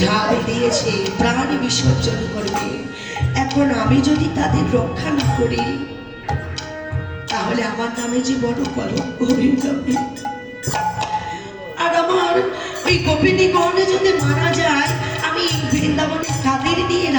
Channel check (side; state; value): both; identical; correlation 1.00